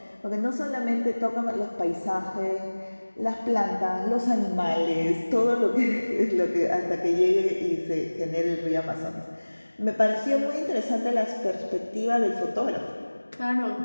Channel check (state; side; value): inverted; both; correlation -1.00